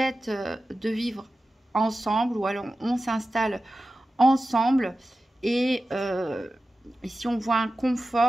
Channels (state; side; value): normal; both; correlation 0.94